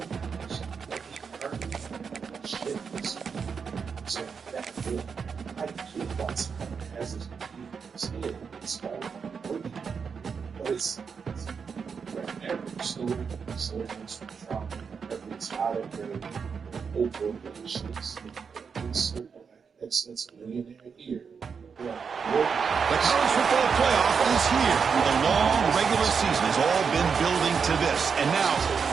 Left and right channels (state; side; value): quieter; left; 6.0 dB